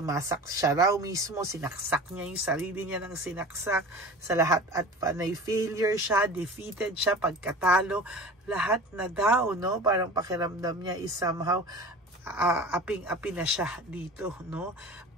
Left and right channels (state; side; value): normal; both; correlation 0.38